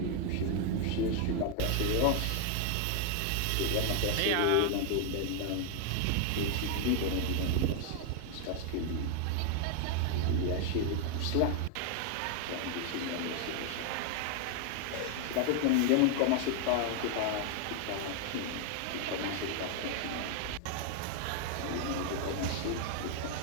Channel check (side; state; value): both; different; correlation 0.00